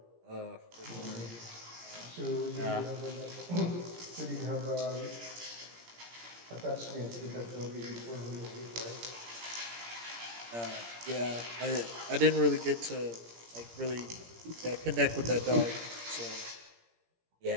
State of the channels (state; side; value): late; left; 17 ms